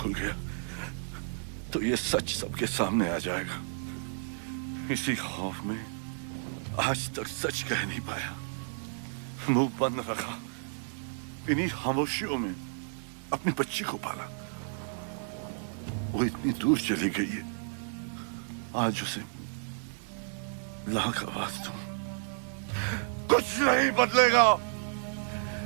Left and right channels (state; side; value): silent; left; digital silence